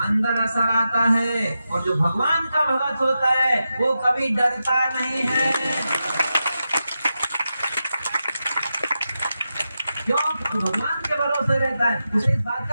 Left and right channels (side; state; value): both; inverted; correlation -0.90